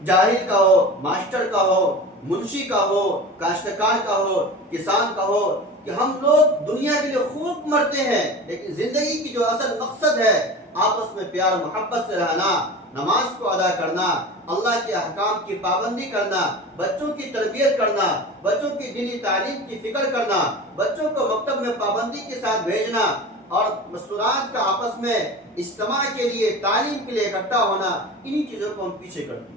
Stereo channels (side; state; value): both; normal; correlation 0.33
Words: جاہل کا ہو، ماسٹر کا ہو، منشی کا ہو، کاشتکار کا ہو، کسان کا ہو، کہ ہم لوگ دنیا کے لیے خوب مرتے ہیں، لیکن زندگی کی جو اصل مقصد ہے آپس میں پیار و محبت سے رہنا، نماز کو ادا کرنا، اللہ کے احکام کی پابندی کرنا، بچوں کی تربیت کرنا، بچوں کی دینی تعلیم کی فکر کرنا، بچوں کو مکتب میں پابندی کے ساتھ بھیجنا، اور مستورات کا آپس میں اجتماع کے لیے، تعلیم کے لیے اکٹھا ہونا، انہی چیزوں کو ہم پیچھے کرتے